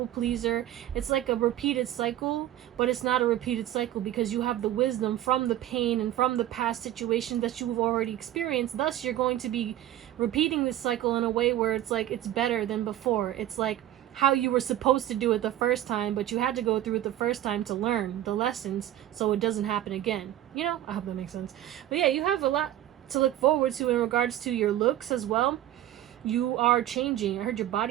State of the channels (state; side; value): quieter; left; 13.0 dB